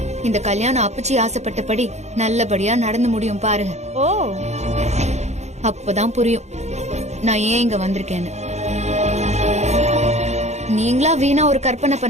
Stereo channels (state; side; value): late; left; 0.33 ms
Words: இந்த கல்யாணம் அப்புச்சி ஆசைப்பட்டபடி நல்லபடியா நடந்து முடியும் பாருங்க. ஓ, அப்பதான் புரியும் நான் ஏன் இங்க வந்திருக்கேன்னு. நீங்களா வீணா ஒரு கற்பனை